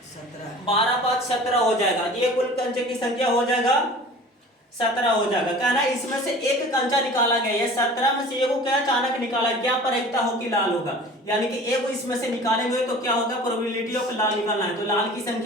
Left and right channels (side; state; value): both; normal; correlation 0.42